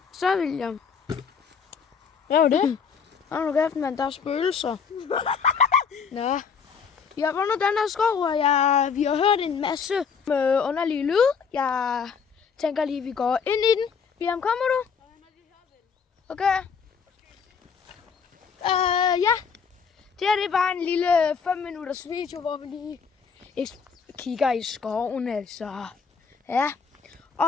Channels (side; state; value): right; quieter; 6.2 dB